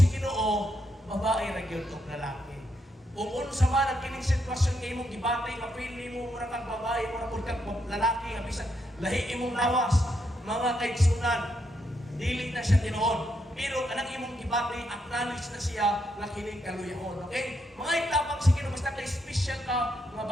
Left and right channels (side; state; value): both; normal; correlation 0.79